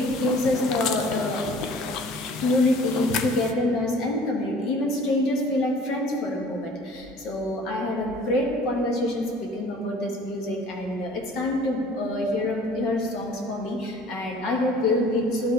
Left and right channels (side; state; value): both; normal; correlation 0.49